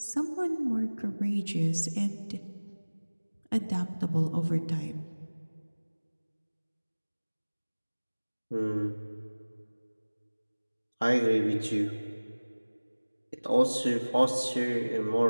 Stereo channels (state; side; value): inverted; both; correlation -1.00